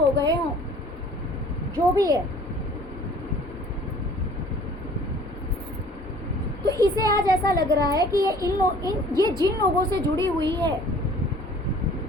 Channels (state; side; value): normal; both; correlation 0.51